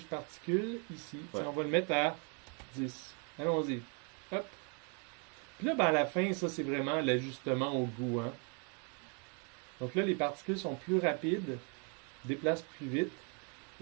particules, ici. Ouais. On va le mettre à 10. Allons-y. Hop. Puis là, ben, à la fin, ça, c'est vraiment l'ajustement au goût. Hein? Donc là, les particules sont plus rapides, déplacent plus vite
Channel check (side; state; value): left; quieter; 37.0 dB